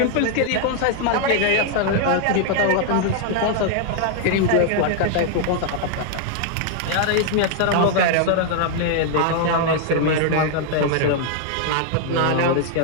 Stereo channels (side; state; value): both; different; correlation 0.00